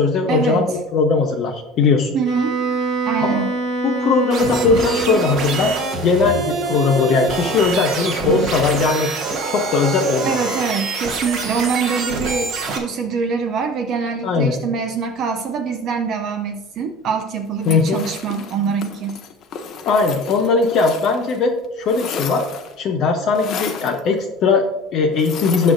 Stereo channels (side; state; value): both; normal; correlation 0.40